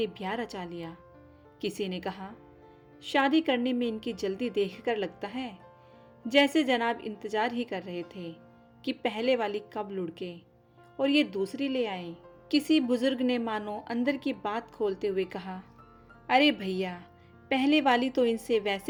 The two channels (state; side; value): identical; both; correlation 1.00